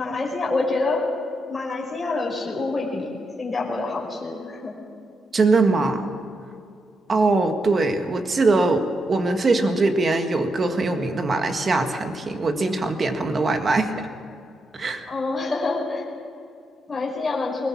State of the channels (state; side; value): normal; both; correlation 0.83